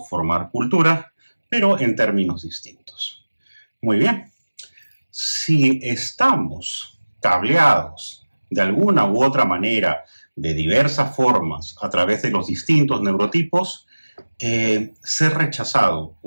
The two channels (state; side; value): inverted; both; correlation -1.00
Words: formar cultura, pero en términos distintos. Muy bien. Si estamos cableados de alguna u otra manera, de diversas formas, a través de los distintos neurotipos, ser rechazado